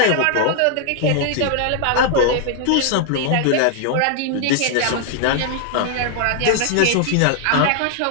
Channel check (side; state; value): both; different; correlation 0.00